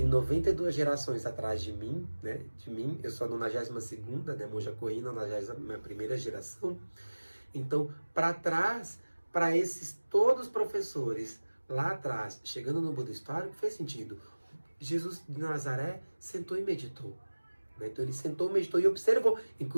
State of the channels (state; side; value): inverted; both; correlation -1.00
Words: 92 gerações atrás de mim, né? Eu sou a 92ª, né? Monja Coen, 91ª geração. Então, para trás, para esses todos professores lá atrás, chegando no Buda histórico, fez sentido. Jesus de Nazaré sentou e meditou, né? Então ele sentou, meditou e observou.